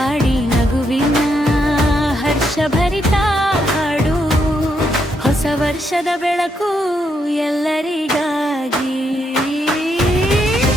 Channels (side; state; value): both; normal; correlation 0.78